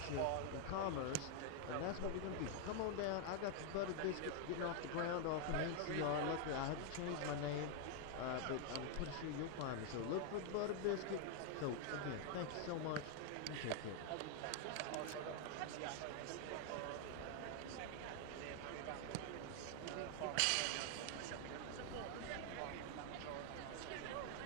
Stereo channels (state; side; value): different; both; correlation 0.00